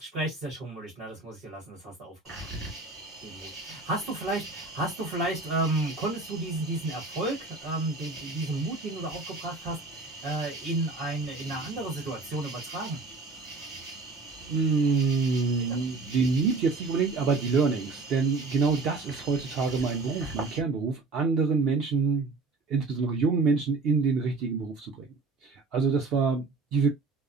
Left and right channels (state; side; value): quieter; left; 3.9 dB